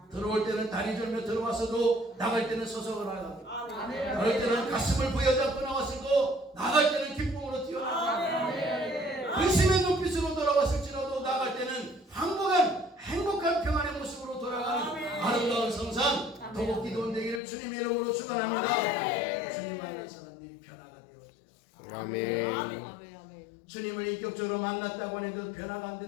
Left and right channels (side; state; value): right; drops out; at 17.4 s